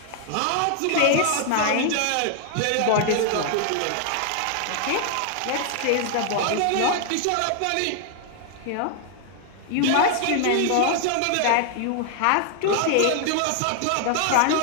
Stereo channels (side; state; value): both; different; correlation 0.00